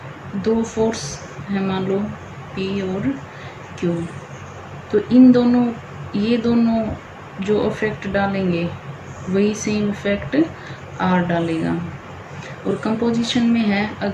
दो फोर्स हैं, मान लो P और Q, तो ये दोनों जो इफेक्ट डालेंगे वही सेम इफेक्ट R डालेगा। और कंपोजिशन में है,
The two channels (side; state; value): both; identical; correlation 1.00